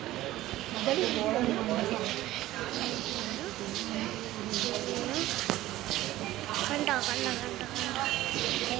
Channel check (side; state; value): left; quieter; 15.7 dB